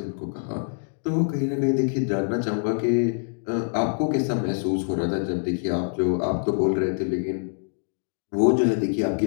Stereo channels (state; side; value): silent; right; digital silence